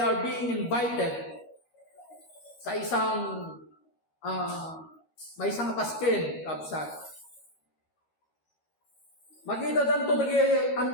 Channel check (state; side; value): late; right; 13 ms